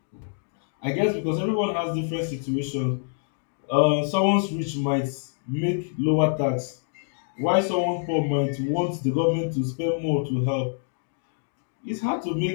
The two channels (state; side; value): silent; right; digital silence